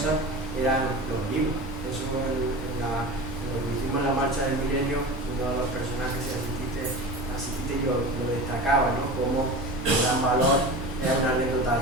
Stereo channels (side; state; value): both; normal; correlation 0.31